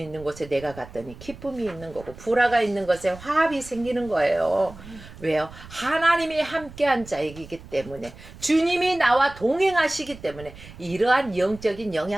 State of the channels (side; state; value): right; noise; rumble, 18 dB below the sound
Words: 있는 곳에 내가 갔더니 기쁨이 있는 거고 불화가 있는 곳에 화합이 생기는 거예요. 왜요? 하나님이 함께한 자이기 때문에 주님이 나와 동행하시기 때문에 이러한 영적인